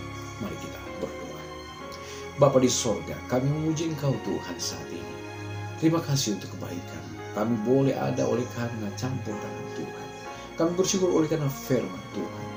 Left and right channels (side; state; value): both; identical; correlation 1.00